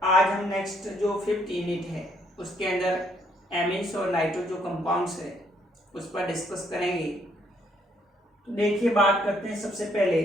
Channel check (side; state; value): both; normal; correlation 0.69